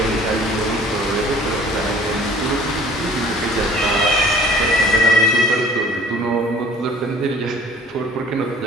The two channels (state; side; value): normal; both; correlation 0.50